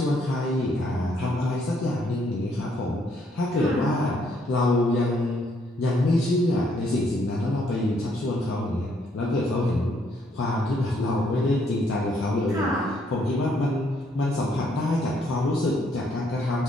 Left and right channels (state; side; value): normal; both; correlation 0.70